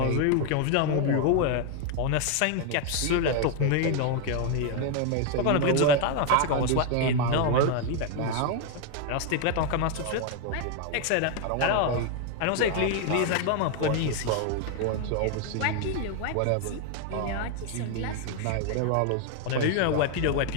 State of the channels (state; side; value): different; both; correlation 0.00